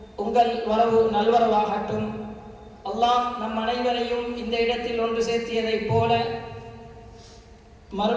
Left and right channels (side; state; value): both; identical; correlation 1.00